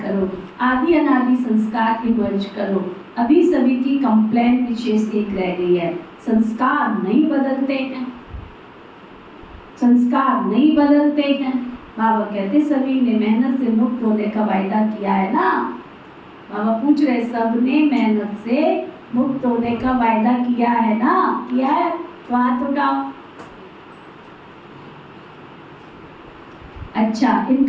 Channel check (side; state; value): both; identical; correlation 1.00